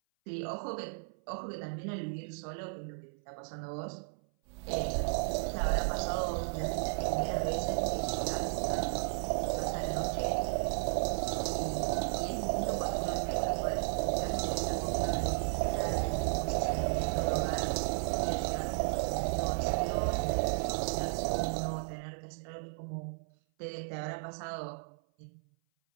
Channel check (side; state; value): left; silent; 55 dB below the other